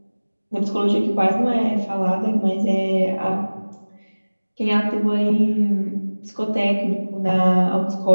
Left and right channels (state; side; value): inverted; both; correlation -1.00